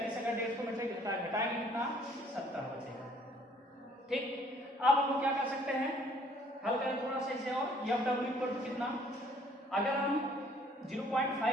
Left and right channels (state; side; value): normal; both; correlation 0.60